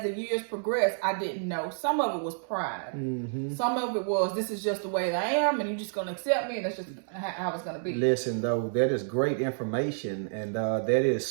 the years progressed, I didn't know. Some of it was pride. Mm-hmm. Some of it was, this is just the way I am, and you're just going to accept me, and that's just how it's going to be. Listen, though, that is great information, and that is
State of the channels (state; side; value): silent; left; 58 dB below the other